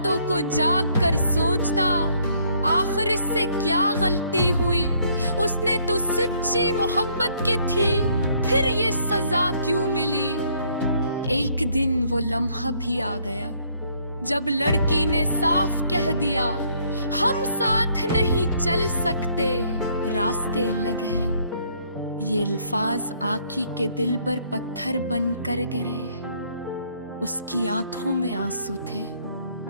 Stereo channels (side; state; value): both; inverted; correlation -0.65